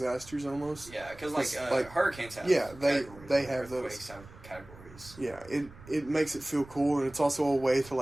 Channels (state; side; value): noise; right; rumble, 20 dB below the sound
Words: almost. Yeah, because like hurricanes have they have those. Have categories. Yeah, it makes it feel cool, and it's also a way to,